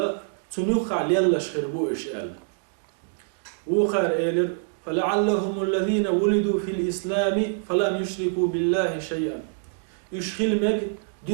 تنوخ يلا شخربو إشيال وخار إيلر فلعلهم الذين ولدوا في الإسلام فلم يشركوا بالله شيئا يشخل مج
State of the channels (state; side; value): silent; left; digital silence